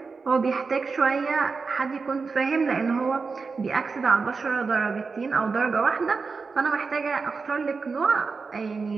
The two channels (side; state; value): left; quieter; 4.7 dB